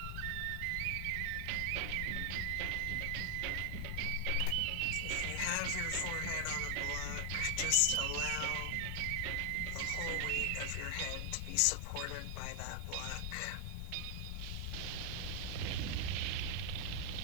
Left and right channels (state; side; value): different; both; correlation 0.00